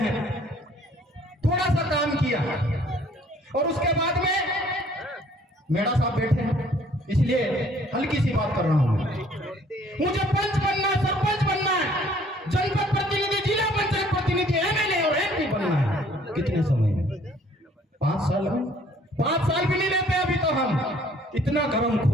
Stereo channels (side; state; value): both; normal; correlation 0.59